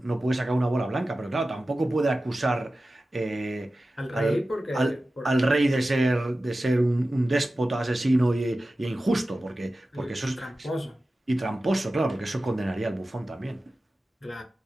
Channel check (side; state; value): both; normal; correlation 0.95